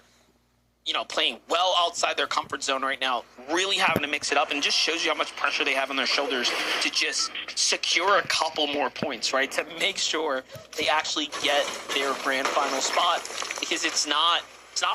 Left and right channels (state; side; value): identical; both; correlation 1.00